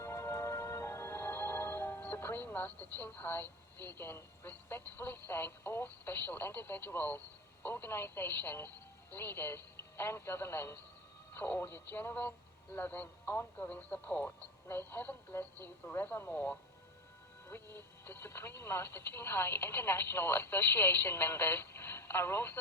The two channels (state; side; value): normal; both; correlation 0.23